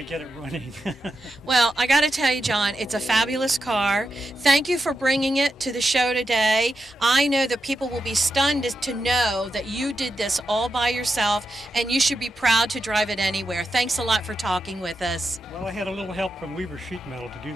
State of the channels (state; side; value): normal; both; correlation 0.87